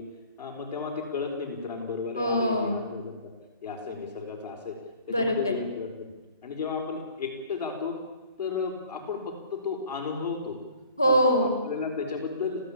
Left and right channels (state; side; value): inverted; both; correlation -0.50